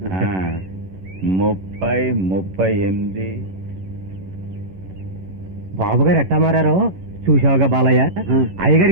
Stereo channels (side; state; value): left; late; 11 ms